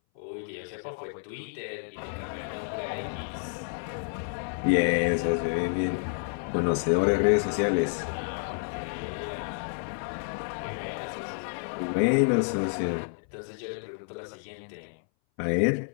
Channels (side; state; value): right; silent; 58 dB below the other